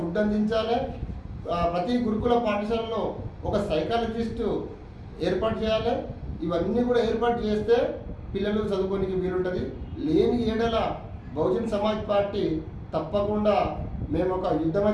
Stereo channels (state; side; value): identical; both; correlation 1.00